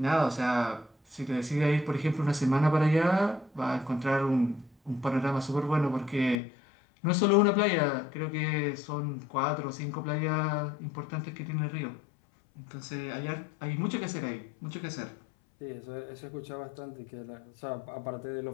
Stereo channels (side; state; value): right; drops out; at 6.4 s